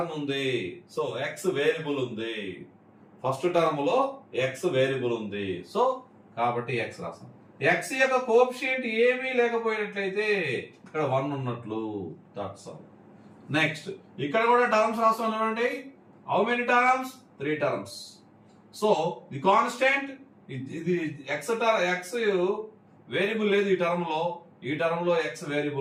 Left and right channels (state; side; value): identical; both; correlation 1.00